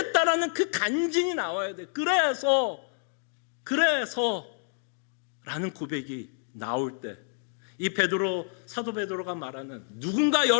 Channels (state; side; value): silent; right; 57 dB below the other